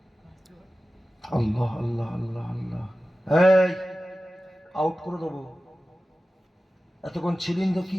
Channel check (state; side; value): normal; both; correlation 0.95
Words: আল্লাহ আল্লাহ আল্লাহ আল্লাহ। এই আউট করে দেবো। এতক্ষণ ছিলেন তো কি